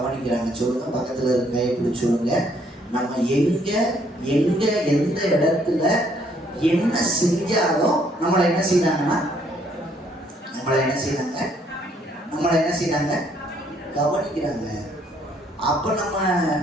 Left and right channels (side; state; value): both; normal; correlation 0.67